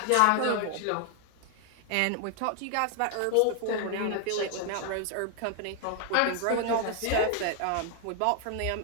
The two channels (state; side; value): different; both; correlation 0.00